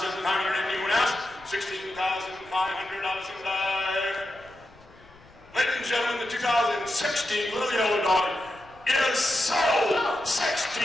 anyone else? 16,500 and dive. Ladies and gentlemen, the 2016 Little Yellow Dog is sold!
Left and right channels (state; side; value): noise; left; rumble, 25 dB below the sound